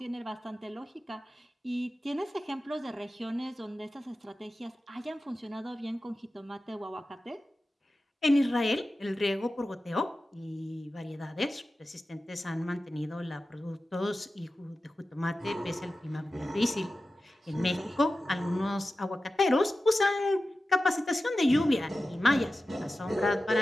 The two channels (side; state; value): both; normal; correlation 0.94